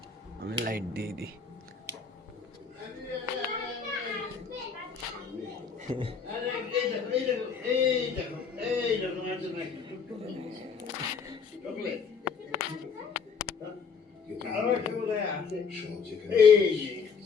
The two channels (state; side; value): quieter; right; 5.8 dB